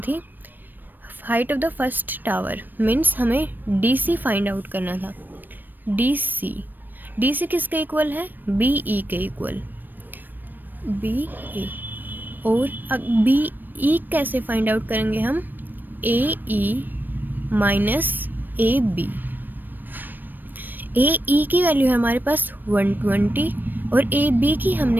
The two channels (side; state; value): left; late; 0.091 ms